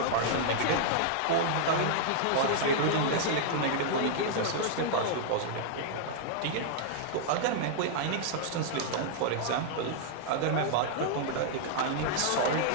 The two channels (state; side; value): different; both; correlation -0.01